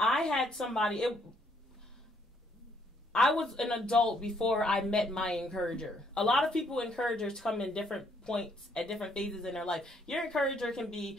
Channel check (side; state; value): both; normal; correlation 0.69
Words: had somebody. I was an adult before I met my encourager. A lot of people, encouragers, come in different points at different phases in their life. Your encourager can